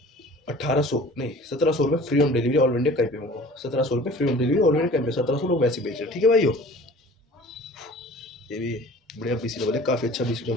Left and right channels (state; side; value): normal; both; correlation 0.45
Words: 1800 नहीं 1700 रुपये free home delivery all India, कहीं पे मंगाओ। 1700 रुपये free home delivery all India, कहीं पे 1700 लोग वैसे ही बेच रहे हैं, ठीक है भाइयों। ये भी बढ़िया BCAA है, काफ़ी अच्छा